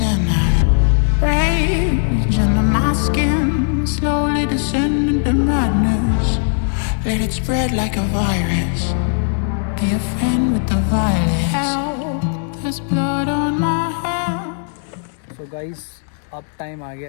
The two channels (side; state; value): right; silent; digital silence